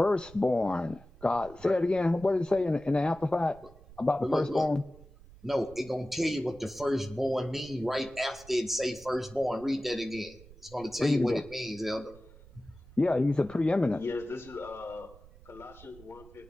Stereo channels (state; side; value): noise; right; rumble, 22 dB below the sound